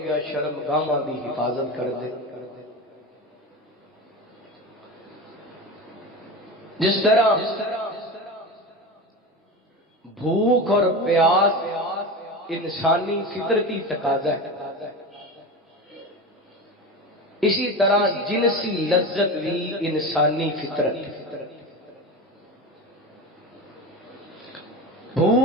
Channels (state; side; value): normal; both; correlation 0.26